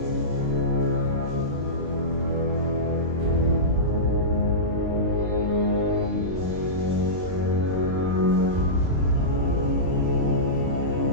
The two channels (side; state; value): left; late; 22 ms